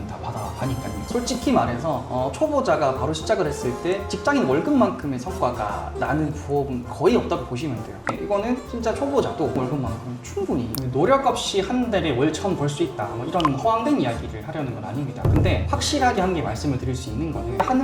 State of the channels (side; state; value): both; identical; correlation 1.00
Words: 다 받아가니까요. 솔직히 말해서 초보자가 바로 시작을 했을 때 직장인 월급만큼의 성과가 나는 부업은 거의 없다고 보시면 돼요. 이거는 진짜 초보자도 월급만큼 충분히 노력 없이 한 달에 월 1,000 벌 수 있다, 뭐 이런 허황된 이야기를 하려는 건 아닙니다. 근데 확실하게 한 개 말씀을 드릴 수 있는 거는